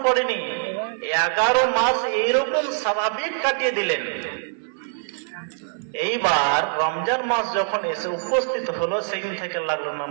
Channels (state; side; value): silent; left; 58 dB below the other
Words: পড়েনি, 11 মাস এইরকম স্বাভাবিক কাটিয়ে দিলেন। এইবার রমজান মাস যখন এসে উপস্থিত হলো, সেদিন থেকে লাগলো